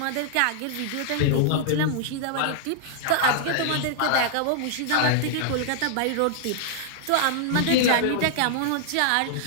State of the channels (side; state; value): both; different; correlation -0.01